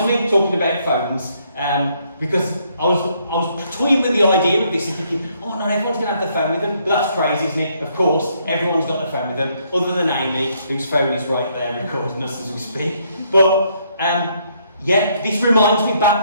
me, talking about phones, because I was toying with the idea of this and thinking, oh, not everyone's going to have their phone with them. But that's crazy, isn't it? Of course, everyone's got their phone with them, other than Amy, whose phone is right there recording us as we speak. But, yeah, this reminds me,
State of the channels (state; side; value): inverted; both; correlation -0.70